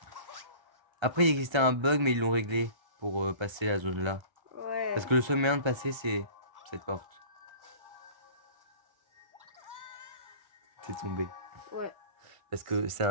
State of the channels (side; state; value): left; late; 1.3 ms